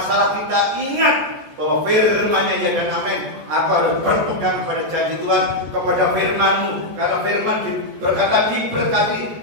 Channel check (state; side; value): late; left; 14 ms